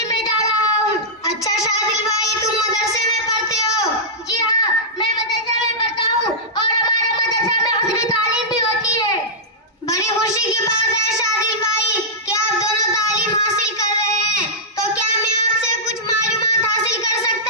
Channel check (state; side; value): normal; both; correlation -0.14